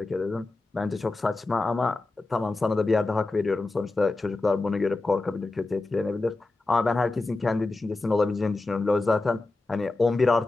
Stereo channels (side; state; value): right; quieter; 3.2 dB